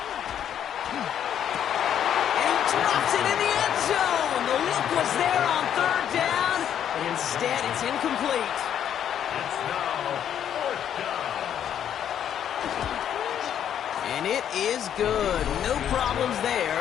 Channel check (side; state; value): right; quieter; 9.6 dB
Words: And he drops it in the end zone. The look was there on 3rd down, but instead it's incomplete. It's now 4th down. And it is good. No problems there